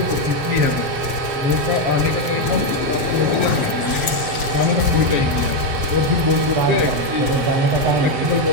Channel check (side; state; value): left; late; 7.1 ms